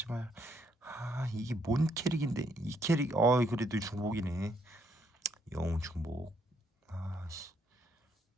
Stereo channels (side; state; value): both; normal; correlation 0.72